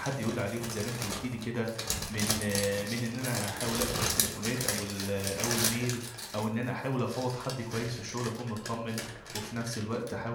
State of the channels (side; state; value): both; identical; correlation 1.00